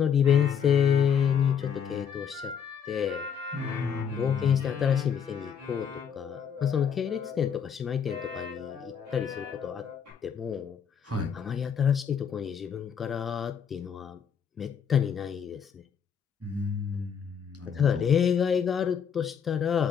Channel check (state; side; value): quieter; right; 7.6 dB